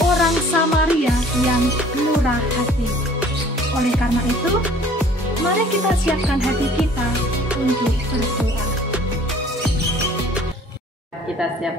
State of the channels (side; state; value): both; normal; correlation 0.53